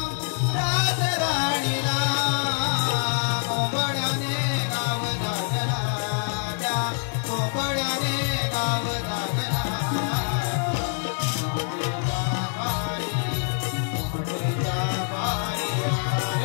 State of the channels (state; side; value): silent; right; 58 dB below the other